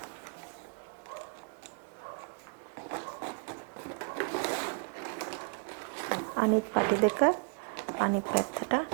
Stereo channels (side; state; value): left; quieter; 36.8 dB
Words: අනිත් පටි දෙක අනිත් පැත්තට